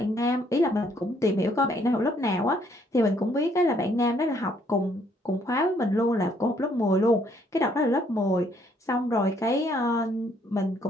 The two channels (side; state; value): both; normal; correlation 0.67